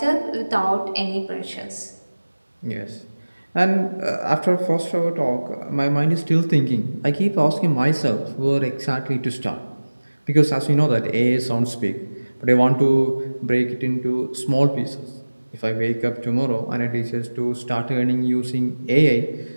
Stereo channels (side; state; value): both; inverted; correlation -1.00